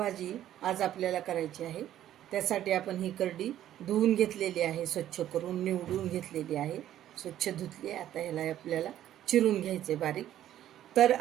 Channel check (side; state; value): left; quieter; 12.1 dB